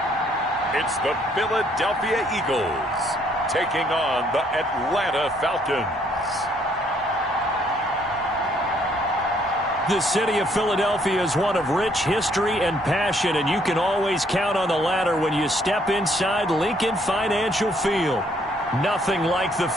It's the Philadelphia Eagles taking on the Atlanta Falcons. The city of Philadelphia is one of rich history and passion, and you can always count on the latter when you step inside Lincoln Financial Field. Nothing like the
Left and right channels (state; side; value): normal; both; correlation 0.67